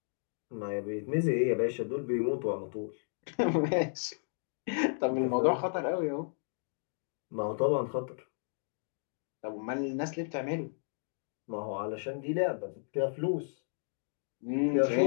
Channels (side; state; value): right; silent; digital silence